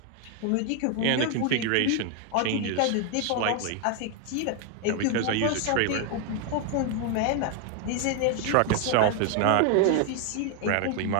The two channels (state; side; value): different; both; correlation 0.00